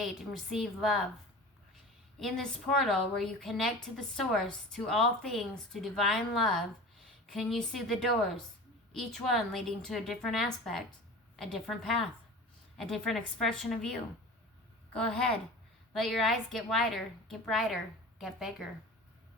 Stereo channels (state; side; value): normal; both; correlation 0.36